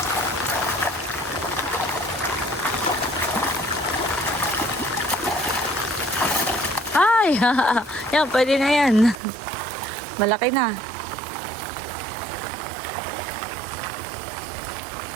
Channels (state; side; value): drops out; left; at 9.2 s